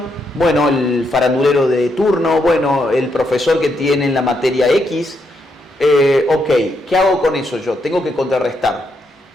bueno, el farandulero de turno, bueno, el profesor que tiene en la materia X. Ok, ¿qué hago con eso yo? Tengo que contrarrestar.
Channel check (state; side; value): normal; both; correlation 0.79